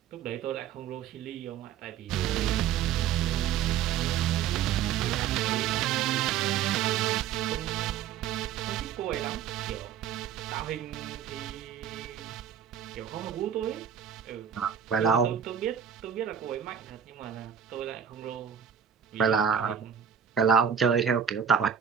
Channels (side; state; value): left; quieter; 8.4 dB